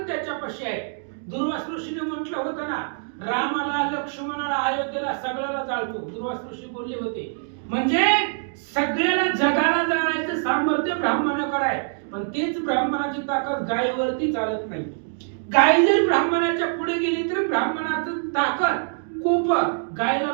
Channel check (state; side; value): silent; left; digital silence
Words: त्याच्यापाशी आहे. दुर्वास ऋषीने म्हटलं होतं ना, रामाला, लक्ष्मणाला, अयोध्येला सगळ्याला जाळतो. दुर्वास ऋषी बोलले होते, म्हणजे सगळ्याला जगाला जाळायचं सामर्थ्य ब्राह्मणाकडे आहे. पण तेच ब्राह्मणाची ताकद गायीवरती चालत नाही. गाय जर ब्राह्मणाच्या पुढे गेली तर ब्राह्मणाचं ताकद कोप गायला